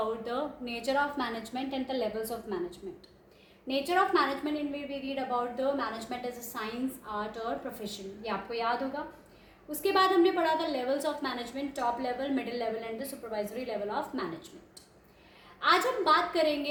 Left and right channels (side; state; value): both; identical; correlation 1.00